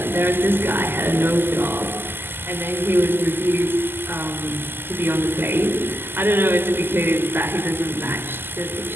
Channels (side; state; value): left; late; 0.10 ms